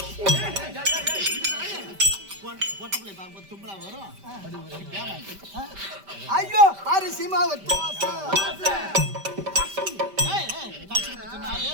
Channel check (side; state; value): left; late; 5.1 ms